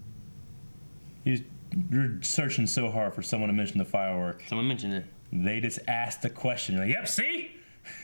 You're searching so hard for someone to mention the firework. Someone mentioned it. They just asked the question. You're like, yep, see?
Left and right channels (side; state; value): both; inverted; correlation -1.00